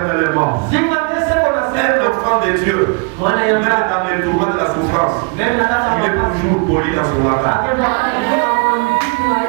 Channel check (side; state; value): left; quieter; 34.4 dB